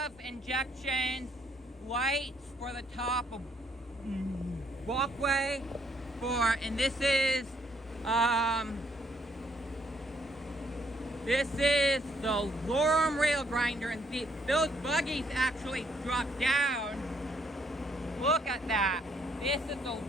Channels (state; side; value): normal; both; correlation 0.70